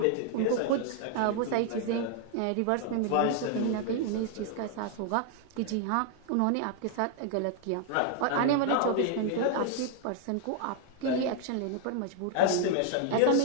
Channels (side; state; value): both; different; correlation 0.00